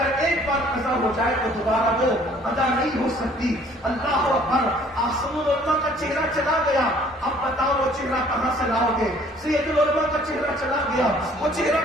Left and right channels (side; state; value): both; normal; correlation 0.57